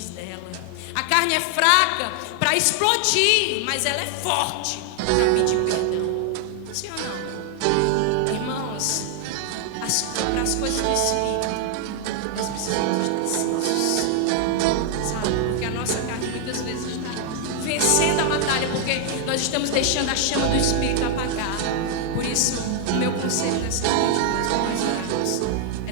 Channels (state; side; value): different; both; correlation 0.00